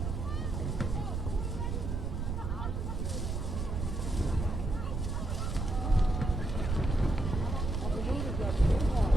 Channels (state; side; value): noise; right; rumble, 2 dB below the sound